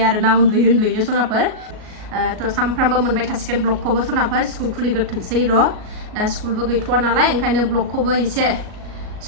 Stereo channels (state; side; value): late; left; 38 ms